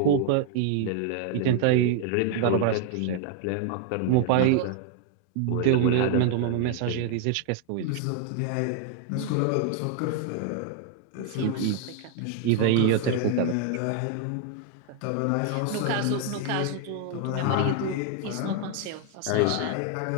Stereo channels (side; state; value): both; different; correlation 0.00